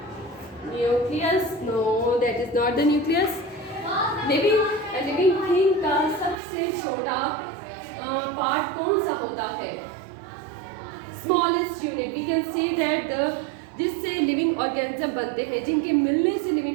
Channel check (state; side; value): drops out; left; at 6.4 s